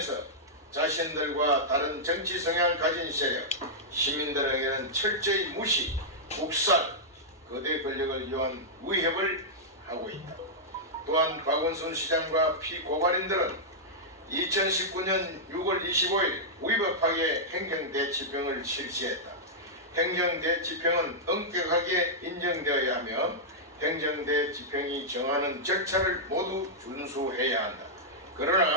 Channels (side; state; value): both; normal; correlation -0.09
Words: 자신들과 다른 정치 성향을 가진 세력, 시민들에게는 철저히 무시, 국살, 거대 권력을 이용한 위협을 하고 있다. 또한 박은손 시장과 피고발인들은 2019년 6월 25일 위법하게 행정대치병을 실시했다. 행정대치병은 엄격하게 인정되어야 하며 행정대치병이 정하는 절차를 모두 준수해야 한다.